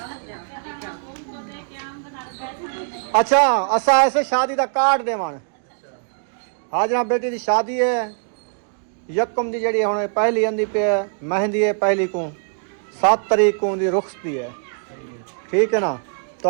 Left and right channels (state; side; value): silent; left; digital silence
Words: अच्छा असा ऐसे शादी का कार्ड देवान हाजरा बेटी की शादी है यकम दी जड़ी हुन पहली आंदी पे मेहंदी है पहली को 7 तारीख को दी रुखसती है ठीक है ना तो